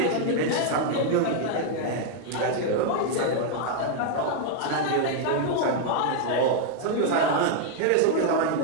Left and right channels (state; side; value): different; both; correlation 0.00